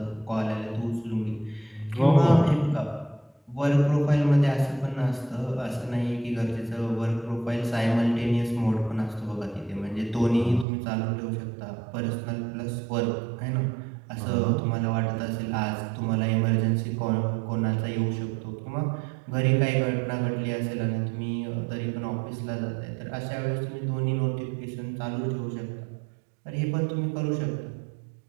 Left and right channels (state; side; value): drops out; left; at 10.7 s